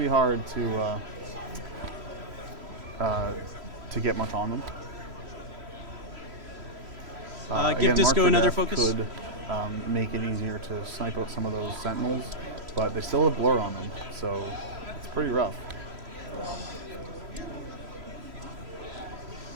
hard to get much on them. Give Again, Disco Mark for another Death focus. Could make it easier to snipe out some of those sentinels, but they still have blur on them, so it's pretty rough.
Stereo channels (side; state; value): left; late; 3.0 ms